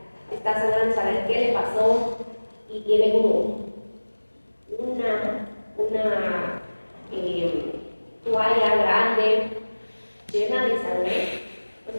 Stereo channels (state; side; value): inverted; both; correlation -1.00